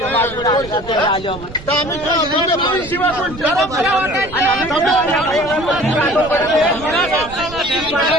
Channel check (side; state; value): right; noise; rumble, 16 dB below the sound